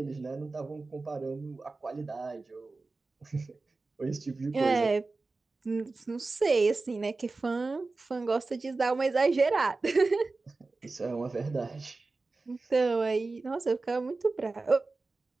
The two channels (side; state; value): left; quieter; 3.6 dB